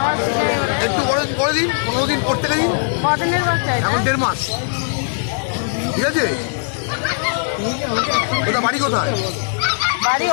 একটু করে দিন, 15 দিন পর থেকে দিন, এখন 1.5 মাস। ঠিক আছে, ওটা বাড়ি কোথায়? বাড়ি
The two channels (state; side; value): silent; right; 63 dB below the other